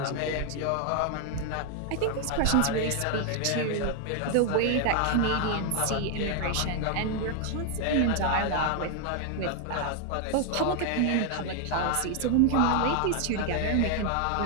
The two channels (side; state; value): both; different; correlation 0.00